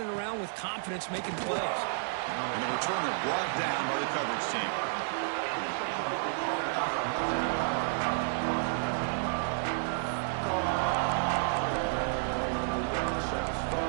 around with confidence making plays. And the returner brought down by the coverage team.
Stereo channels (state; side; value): silent; left; 57 dB below the other